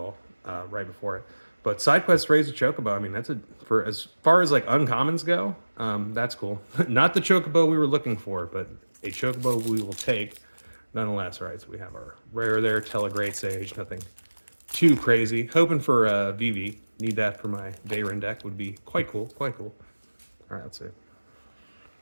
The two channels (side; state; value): both; inverted; correlation -1.00